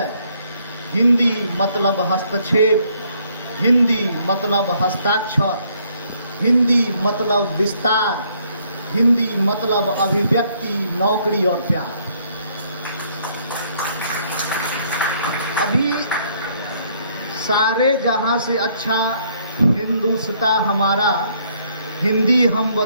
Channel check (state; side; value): inverted; both; correlation -0.67